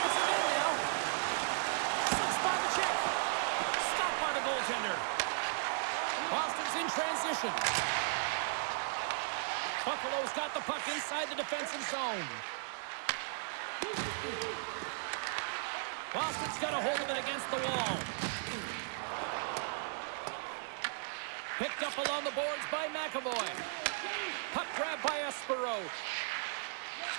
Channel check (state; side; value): silent; left; 54 dB below the other